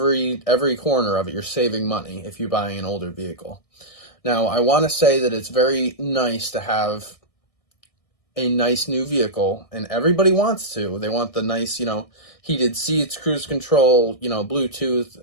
corner of it. You're saving money if you're buying an older vehicle. Now, I want to say that it's very nice to have a nice new vehicle, and everybody wants to. They want the nice, you know, heated seats, cruise control, you know, Bluetooth,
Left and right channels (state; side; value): late; right; 1.6 ms